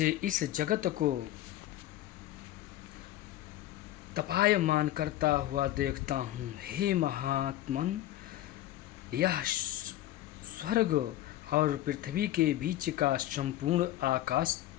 इस जगत को तपायमान करता हुआ देखता हूँ। हे महात्मन, यह स्वर्ग और पृथ्वी के बीच का संपूर्ण आकाश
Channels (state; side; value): quieter; right; 14.3 dB